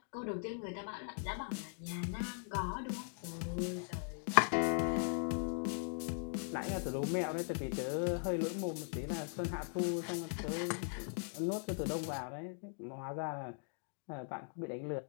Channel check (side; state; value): right; silent; 51 dB below the other